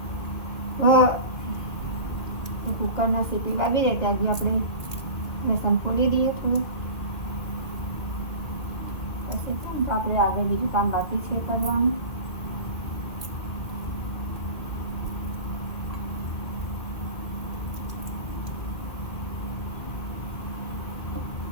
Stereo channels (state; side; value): late; right; 2.1 ms